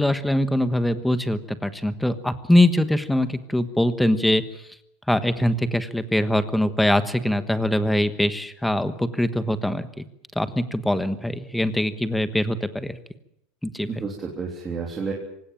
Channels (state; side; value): normal; both; correlation 0.92